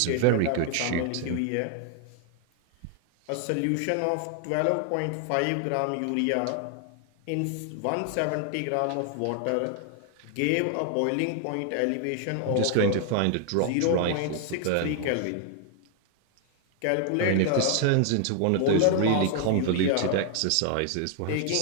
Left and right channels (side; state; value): both; different; correlation 0.00